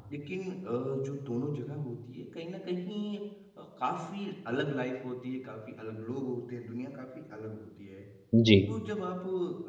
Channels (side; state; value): both; identical; correlation 1.00